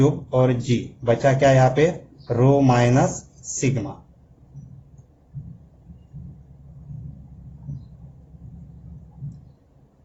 और g बचा क्या यहाँ पे? रो माइनस सिग्मा।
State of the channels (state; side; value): identical; both; correlation 1.00